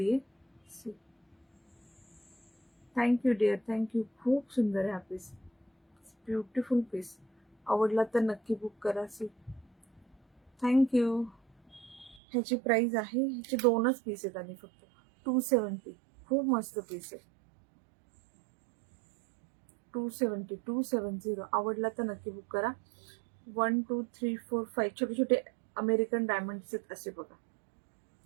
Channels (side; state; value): left; drops out; at 12.2 s